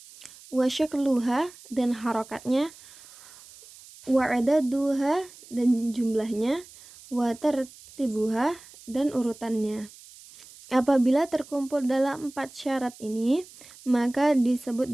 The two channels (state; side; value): noise; right; hiss, 21 dB below the sound